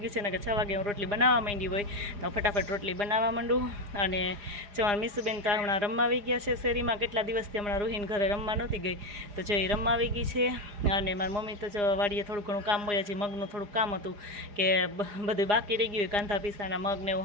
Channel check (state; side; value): late; left; 4.9 ms